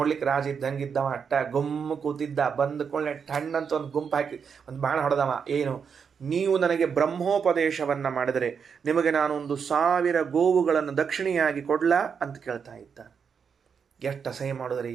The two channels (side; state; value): left; quieter; 6.5 dB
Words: ರಾಜ ಇದ್ದಂಗಿದ್ದವ, ಅಟ್ಟ ಗುಮ್ಮ ಕೂತಿದ್ದ. ಬಂದ್ಕೊಳ್ಳೆ ಟಣ್ಣಂತ ಒಂದು ಗುಂಪು ಹಾಕಿ ಒಂದು ಬಾಣ ಹೊಡೆದವ. ಏನು, ನೀವು ನನಗೆ ಬ್ರಹ್ಮೋಪದೇಶವನ್ನು ಮಾಡಿದರೆ ನಿಮಗೆ ನಾನು 1000 ಗೋವುಗಳನ್ನು ದಕ್ಷಿಣೆಯಾಗಿ ಕೊಡ್ಲಾ ಅಂತ ಕೇಳ್ತಾ ಇದ್ದ. ಎಷ್ಟು ಅಸಹ್ಯ ಮಾಡಿದ್ರಿ